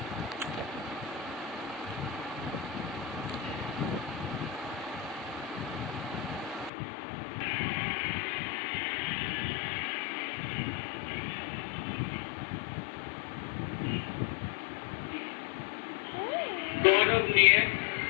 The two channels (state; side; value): drops out; right; at 6.7 s